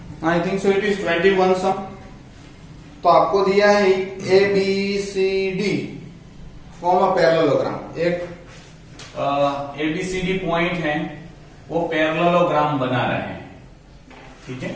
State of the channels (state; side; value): identical; both; correlation 1.00